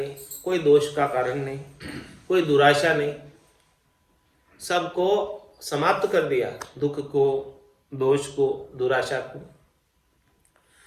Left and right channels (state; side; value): identical; both; correlation 1.00